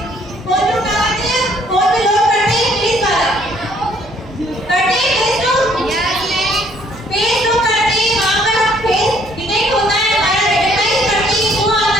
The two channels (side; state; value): both; normal; correlation 0.63